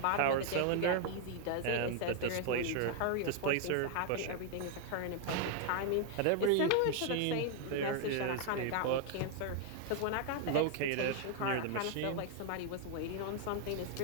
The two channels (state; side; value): different; both; correlation 0.00